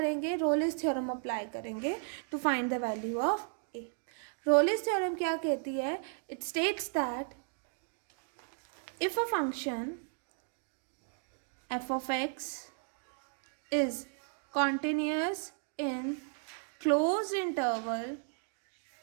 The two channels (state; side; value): silent; left; 55 dB below the other